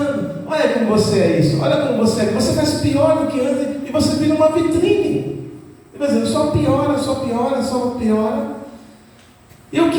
Olha como você é isso. Olha como você é. Você faz pior do que antes e você vira uma vitrine. Por exemplo, só piora, só piora, só piora. E o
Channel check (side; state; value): both; identical; correlation 1.00